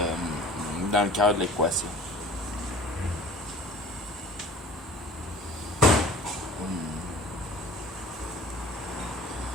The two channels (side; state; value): both; normal; correlation 0.45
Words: cœur de l'équation.